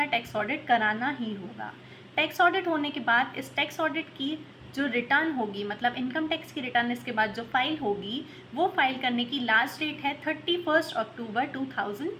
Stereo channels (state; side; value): identical; both; correlation 1.00